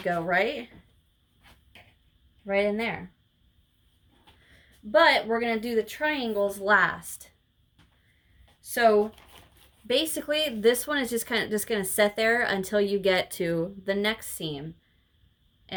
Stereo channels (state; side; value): identical; both; correlation 1.00